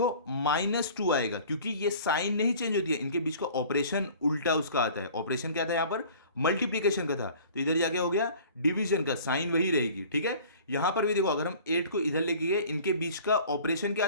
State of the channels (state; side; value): inverted; both; correlation -0.47